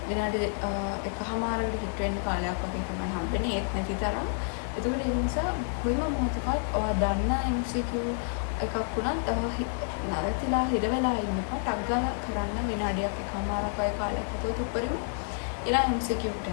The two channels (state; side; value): silent; right; 58 dB below the other